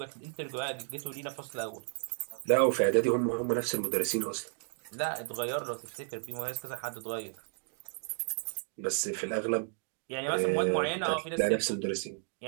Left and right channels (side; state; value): left; silent; 56 dB below the other